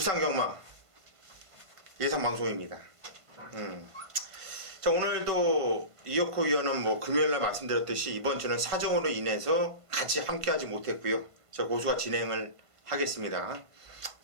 예상방송입니다. 자, 오늘도 이혁호 위원은 금요일날 말씀드렸듯이 이번 주는 사정으로 인해서 같이 함께하지 못했고요. 저 고수가 진행을 하겠습니다.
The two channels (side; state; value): left; late; 1.5 ms